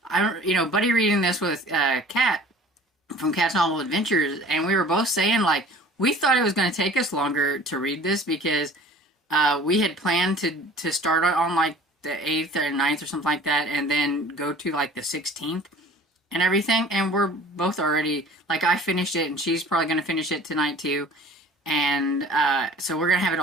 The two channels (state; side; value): normal; both; correlation 0.46